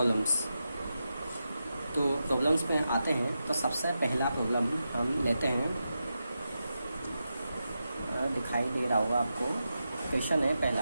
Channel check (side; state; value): both; inverted; correlation -0.89